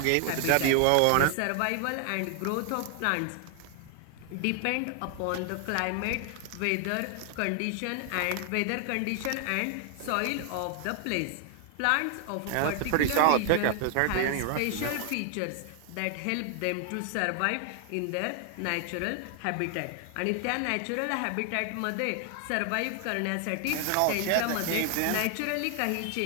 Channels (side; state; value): both; different; correlation 0.00